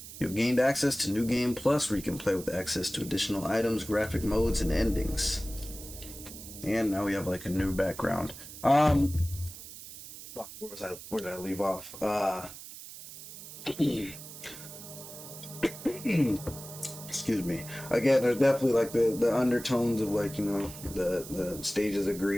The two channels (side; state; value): right; noise; hiss, 14 dB below the sound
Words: You have gained access to New Game Plus, where you can play with access to additional items, graphic modes, and endings. And now we have like a new background. Where did I leave off? Excuse me. Again, there's definitely like the undertones of like, you know, the stages of